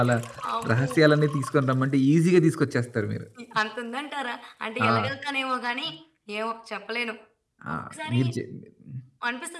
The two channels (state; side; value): identical; both; correlation 1.00